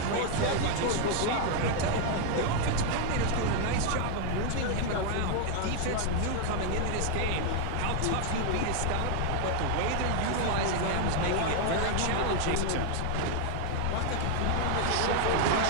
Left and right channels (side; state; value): both; different; correlation 0.00